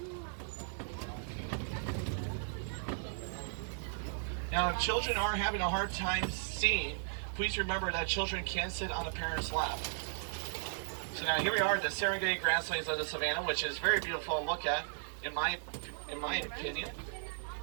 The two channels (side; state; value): left; silent; digital silence